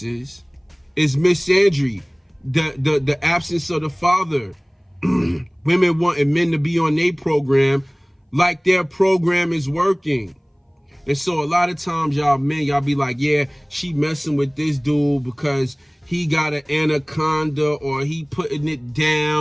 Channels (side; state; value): both; identical; correlation 1.00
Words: is misandry, the absence of the father. Women wanting men to be on their program like their program is working. And so a lot of times y'all men, y'all be like, yeah, she messing with this dude because he got an anaconda or he putting it